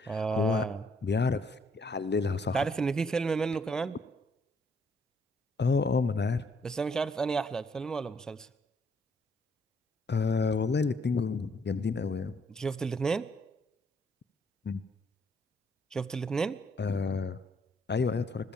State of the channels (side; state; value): both; normal; correlation 0.68